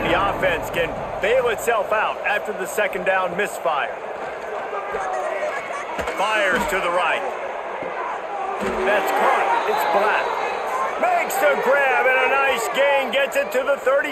the offense can bail itself out after the second down misfire. Fires to the right. That's caught. It's Black. Makes the grab, and a nice gain gets it to the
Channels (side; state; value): both; identical; correlation 1.00